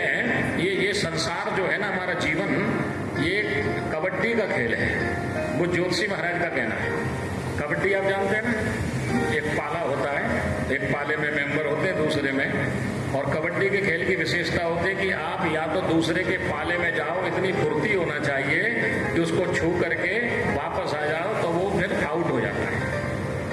ये संसार जो है ना हमारा जीवन, ये कबड्डी का खेल है, वो ज्योतिषी महाराज का कहना है। कबड्डी आप जानते हैं ना, एक पाला होता है, एक पाले में मेंबर होते हैं दूसरे में, और कबड्डी के खेल की विशेषता होती है कि आप या तो दूसरे के पाले में जाओ, इतनी फुर्ती होना चाहिए कि उसको छू करके वापस आ जाओ तो वो फिर आउट हो जाता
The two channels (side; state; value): both; identical; correlation 1.00